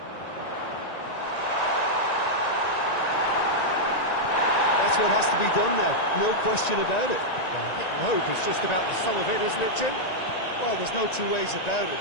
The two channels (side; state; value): right; late; 1.9 ms